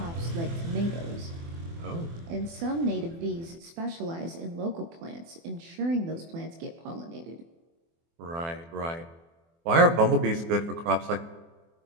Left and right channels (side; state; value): left; late; 24 ms